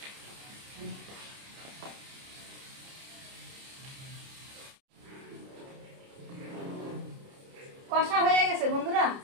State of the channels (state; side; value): late; left; 30 ms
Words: কষা হয়ে গেছে বন্ধুরা,